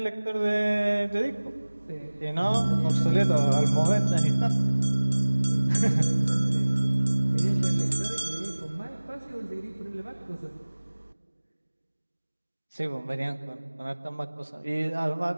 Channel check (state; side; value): inverted; both; correlation -1.00